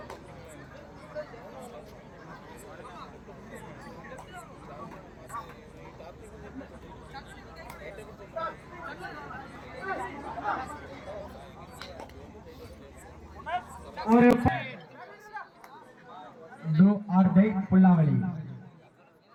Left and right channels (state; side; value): identical; both; correlation 1.00